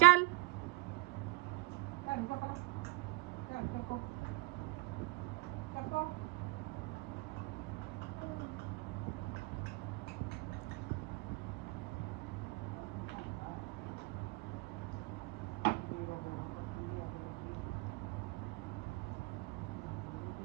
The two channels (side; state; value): left; quieter; 20.1 dB